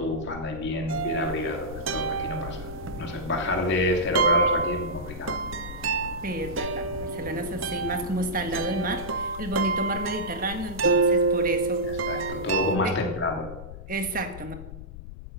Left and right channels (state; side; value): noise; left; rumble, 12 dB below the sound